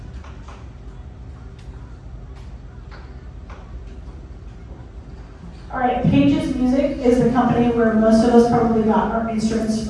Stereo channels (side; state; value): both; identical; correlation 1.00